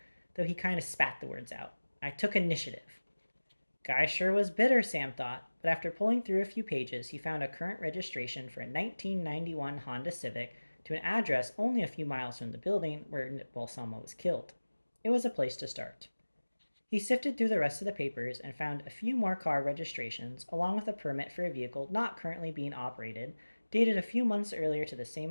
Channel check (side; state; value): both; inverted; correlation -1.00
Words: though he kind of spat the words out. I took initiative. Guy sure was bitter, Sam thought, but after pulling through a few pages, he found a current registration for a 1991 Honda Civic to an address only a few miles from the building where Balsamo was killed. It was a place to start. He sifted through the rest of the papers and found a few more car registrations, along with a permit for a vehicle not currently being operated, dated a few months earlier to the